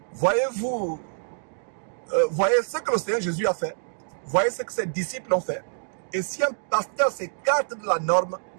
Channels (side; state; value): left; silent; digital silence